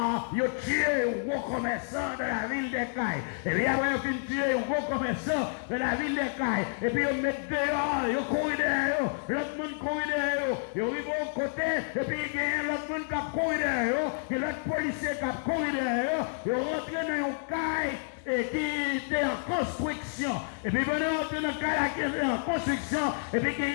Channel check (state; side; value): silent; right; digital silence